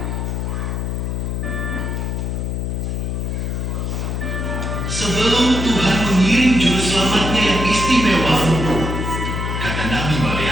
Sebelum Tuhan mengirim juru selamatnya yang istimewa, kata Nabi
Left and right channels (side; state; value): left; noise; hum, 2 dB below the sound